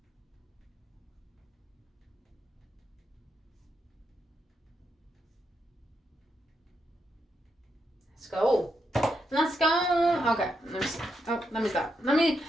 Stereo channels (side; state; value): both; normal; correlation 0.82